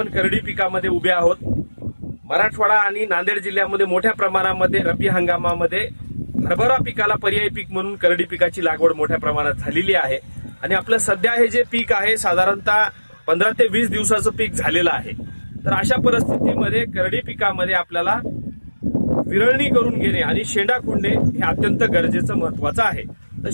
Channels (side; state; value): both; inverted; correlation -1.00